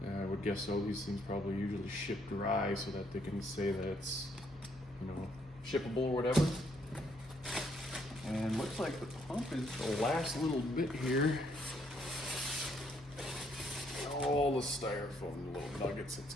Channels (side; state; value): both; normal; correlation 0.70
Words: I would guess so. These things probably usually ship dry so that they can say that it's, you know, shippable or whatever. And looks like the pump is the last little bit here. All the styrofoam little nuggets. Let's